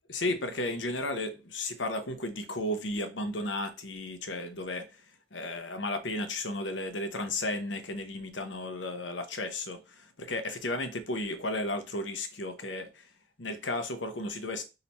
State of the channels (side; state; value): both; normal; correlation 0.13